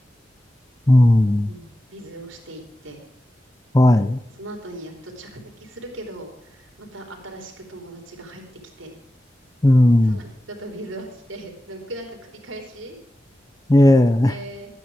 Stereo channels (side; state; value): both; normal; correlation 0.93